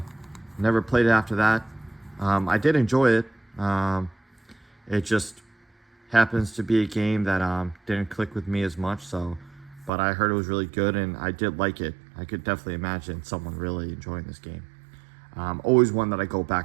Never played it after that. I did enjoy it. It just happens to be a game that didn't click with me as much. But I heard it was really good, and I did like it. I could definitely imagine someone really enjoying this game. Always one that I go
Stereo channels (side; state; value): left; drops out; at 9.9 s